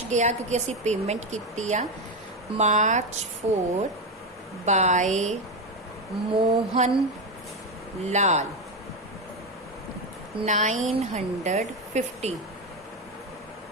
गया क्योंकि असी पेमेंट की आ। March 4 by Mohan Lal 950।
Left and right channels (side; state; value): both; normal; correlation 0.12